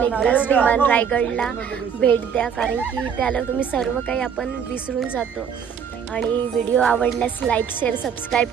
एकदाच विमान रायगडला भेट द्या कारण की त्याला तुम्ही सर्व काही आपण विसरून जातो. आणि व्हिडिओ आवडल्यास लाईक शेअर सबस्क्राईब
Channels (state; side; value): quieter; left; 7.4 dB